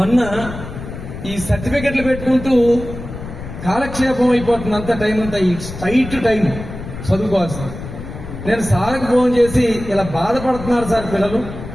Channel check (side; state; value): left; noise; rumble, 10 dB below the sound